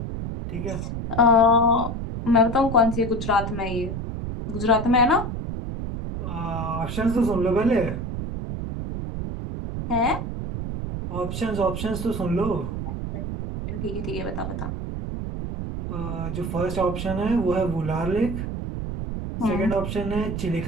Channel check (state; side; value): noise; right; rumble, 5 dB below the sound